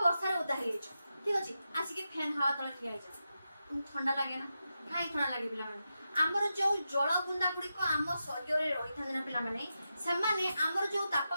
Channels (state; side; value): inverted; both; correlation -0.89